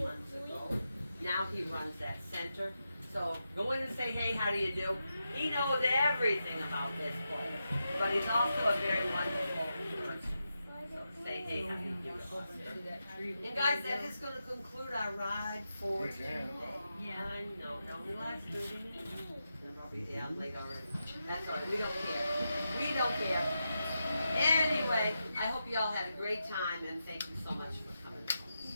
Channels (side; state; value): both; inverted; correlation -0.88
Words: ago. Now he runs that center. So go in and say, hey, how do you do? He knows everything about this place. But he's also a very wonderful person. So say, hey, how do you do? And guys, that is going to conclude our ride for today. Yeah, I know. It only lasts 30 minutes. And I'll be down late already. That's all right. We don't care. We don't care. Anyway, I hope you all had a great time, and thank you so much for coming.